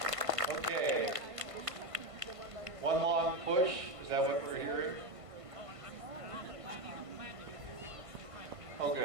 Okay. One long push. Is that what we're hearing? Oh,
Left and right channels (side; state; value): left; late; 1.5 ms